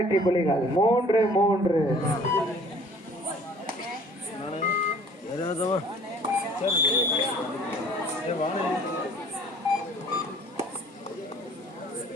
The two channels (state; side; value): normal; both; correlation 0.53